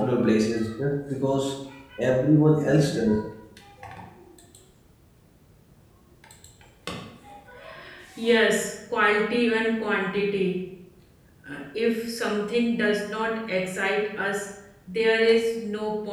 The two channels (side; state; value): both; identical; correlation 1.00